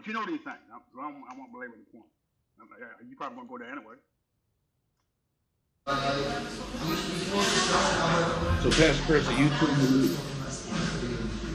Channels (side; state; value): both; identical; correlation 1.00